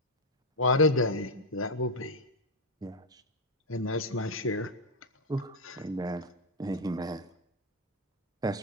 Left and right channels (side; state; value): both; normal; correlation 0.03